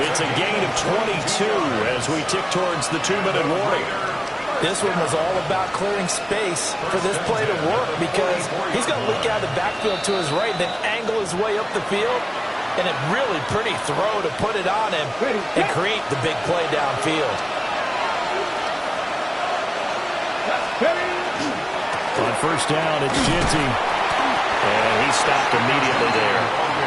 It's a gain of 22 as we tick towards the 2-minute warning. This one was all about clearing space for this play to work because he's going to leak out of the backfield to his right, then angle his way up the field, and a really pretty throw to put it on him and create the big play downfield. On first down, it's Ginty. And he stopped immediately there.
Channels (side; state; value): both; identical; correlation 1.00